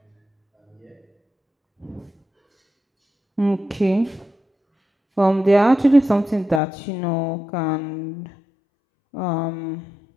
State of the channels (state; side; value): drops out; right; at 6.6 s